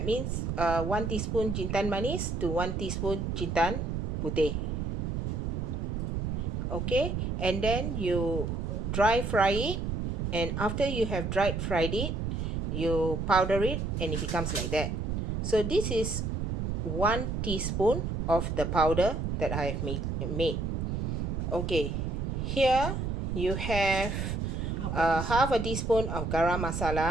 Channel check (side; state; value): right; noise; rumble, 1 dB below the sound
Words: means 1 teaspoon jintan manis to 1 teaspoon jintan putih. Okay, and then you dry fry it, and after you have fried it, you powder it and it becomes like that. So this is 1 teaspoon of the powder that I have made. Okay, here you have half a teaspoon of garam